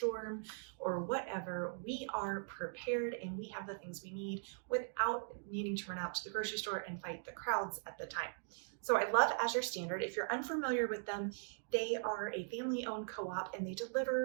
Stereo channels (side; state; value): left; silent; digital silence